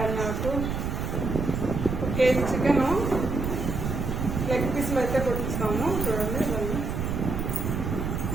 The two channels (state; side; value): noise; right; rumble, 2 dB below the sound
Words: ఆకు, 1 కేజీ చికెను, లెగ్ పీసులు అయితే కొట్టిస్తాము. చూడండి ఇవన్నీ